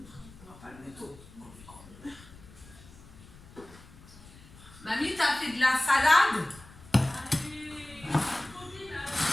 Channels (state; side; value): noise; left; rumble, 21 dB below the sound